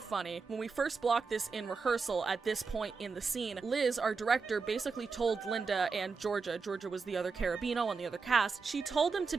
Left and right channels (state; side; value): quieter; left; 4.8 dB